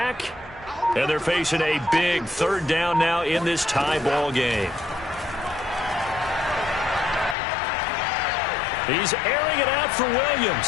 And they're facing a big third down now in this tie ball game. He's airing it out for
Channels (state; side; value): drops out; right; at 7.4 s